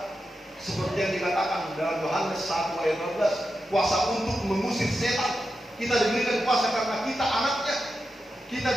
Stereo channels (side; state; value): both; normal; correlation 0.89